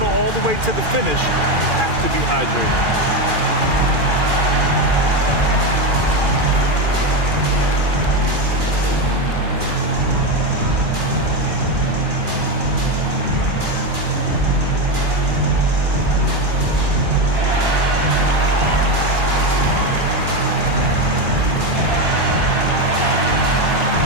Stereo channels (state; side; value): late; left; 2.4 ms